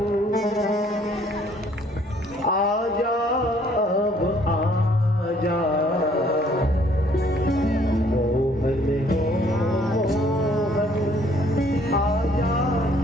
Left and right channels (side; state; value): both; normal; correlation 0.62